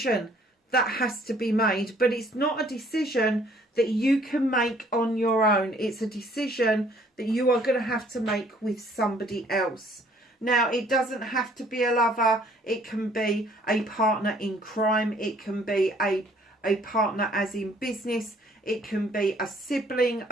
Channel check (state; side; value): normal; both; correlation 0.60